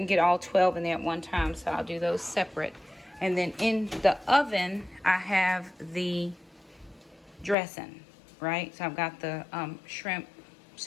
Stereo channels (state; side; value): drops out; right; at 7.6 s